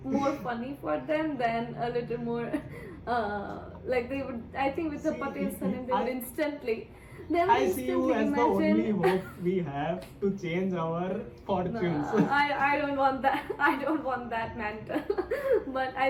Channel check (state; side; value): identical; both; correlation 1.00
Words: more funny for them than a little more like they would. I think with the Patel surname, they would instantly. I see you as the only hope we have to change our fortunes. I don't want that. I don't want that mantle. But